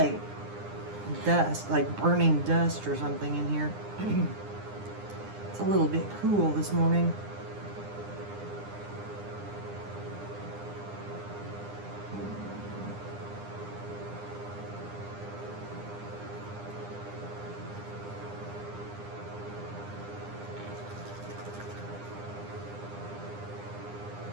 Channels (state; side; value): late; left; 9.8 ms